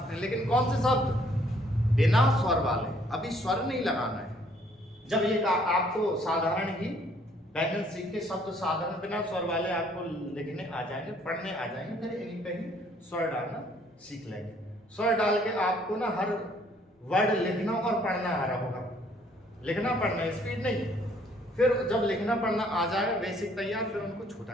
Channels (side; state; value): both; normal; correlation 0.63